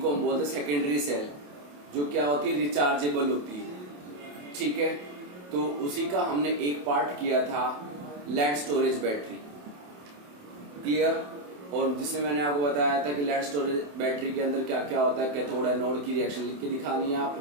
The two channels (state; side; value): late; left; 28 ms